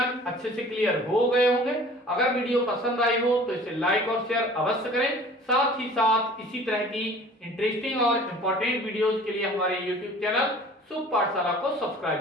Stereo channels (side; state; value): both; normal; correlation 0.47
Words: अच्छे से क्लियर हो गए होंगे। अगर वीडियो पसंद आई हो तो इसे लाइक और शेयर अवश्य करें। साथ ही साथ इसी तरह की इंटरेस्टिंग और इंपॉर्टेंट वीडियोस के लिए हमारे YouTube चैनल शुभ पाठशाला को सब्सक्राइब